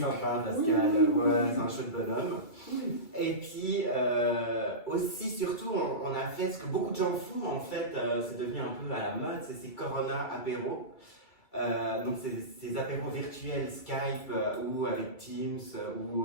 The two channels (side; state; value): right; late; 2.3 ms